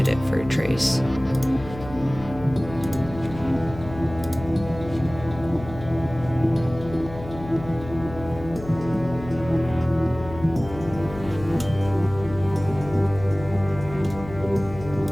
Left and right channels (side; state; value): left; noise; hum, 13 dB below the sound